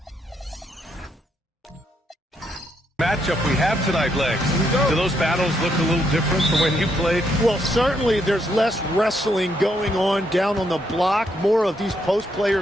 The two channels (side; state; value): both; normal; correlation 0.76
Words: Matchup we have tonight, Legs. Do those battles look a little different from when you played? Well, certainly there's less wrestling going on down on the block. More of these post